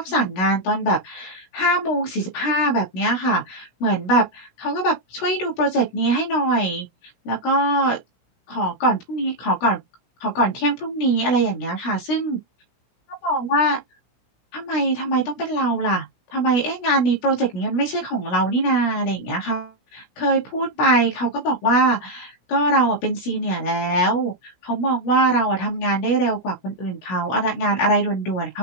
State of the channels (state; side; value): late; right; 16 ms